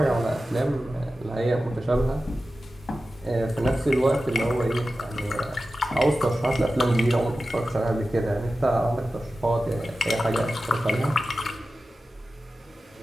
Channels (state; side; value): normal; both; correlation 0.94